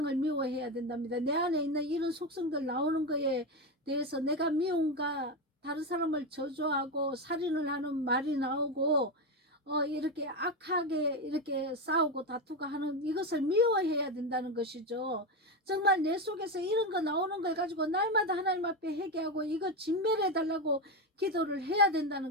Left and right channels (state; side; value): normal; both; correlation 0.13